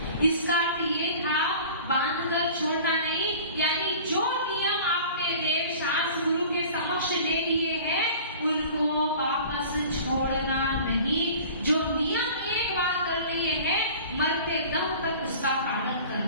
इसका अर्थ ये था बांध कर छोड़ना नहीं यानी जो नियम आपने देव शास्त्र गुरु के समक्ष ले लिए हैं उनको वापस छोड़ना नहीं। जो नियम एक बार कर लिए हैं मरते दम तक उसका पालन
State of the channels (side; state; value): both; inverted; correlation -0.43